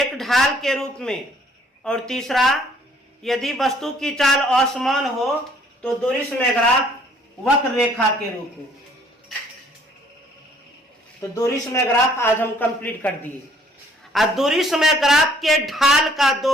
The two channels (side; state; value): both; normal; correlation 0.60